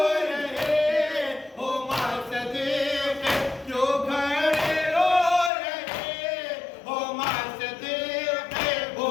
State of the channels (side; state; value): right; drops out; at 5.5 s